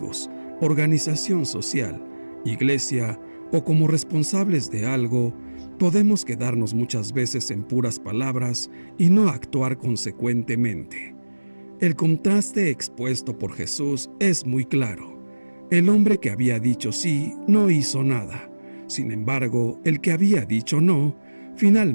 organización social, iglesia o como responsables de algo. Podemos quedarnos muchas veces en puras palabras y no actuar consecuentemente. El contraste expuesto por Jesús es muy claro. El hombre que había dicho sí no hizo nada. Sin embargo, el que había dicho no,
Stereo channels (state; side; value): inverted; both; correlation -1.00